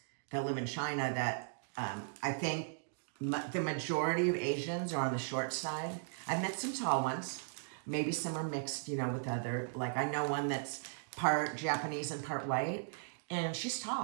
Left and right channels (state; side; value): silent; left; digital silence